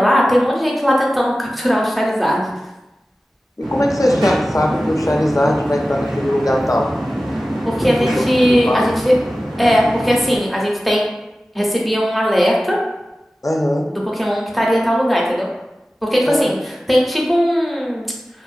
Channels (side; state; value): both; normal; correlation 0.95